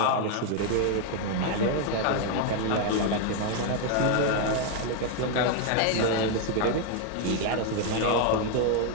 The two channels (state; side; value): different; both; correlation 0.01